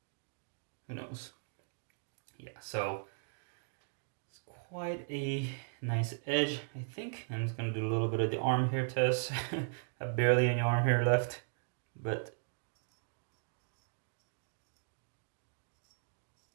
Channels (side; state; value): left; silent; digital silence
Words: Who knows? Yeah, so it's quite a nice edge, I think. I'm just gonna do a little bit of the arm hair test. I have barely any arm hair left, but